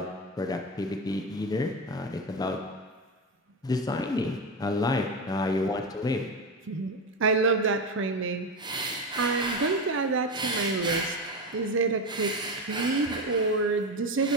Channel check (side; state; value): both; normal; correlation 0.17